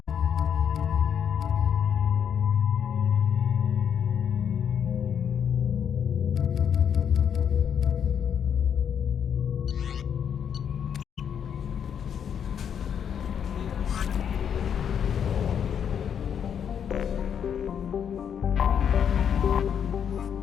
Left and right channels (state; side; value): quieter; right; 8.1 dB